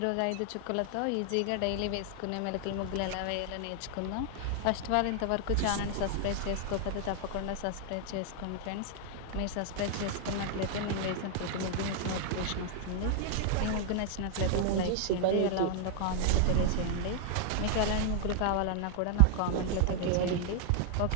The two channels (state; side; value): different; both; correlation 0.00